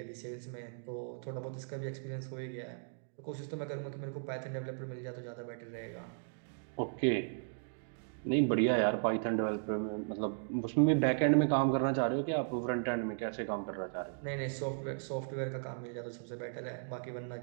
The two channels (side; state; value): left; silent; digital silence